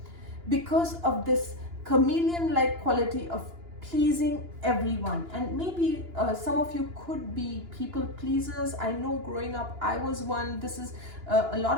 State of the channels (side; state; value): left; late; 2.9 ms